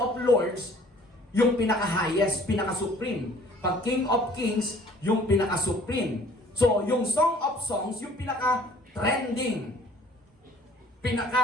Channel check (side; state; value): both; normal; correlation 0.54